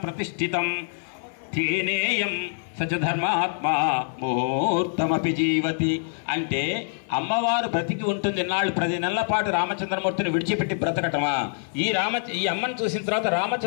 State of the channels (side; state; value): right; silent; digital silence